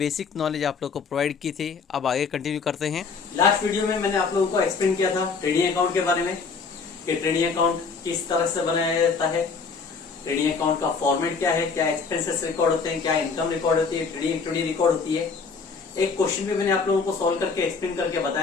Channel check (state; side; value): quieter; right; 5.0 dB